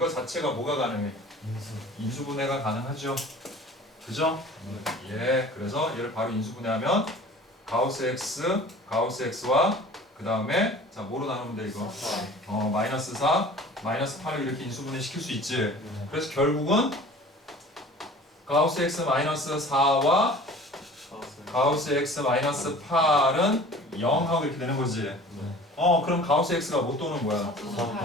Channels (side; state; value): both; normal; correlation 0.44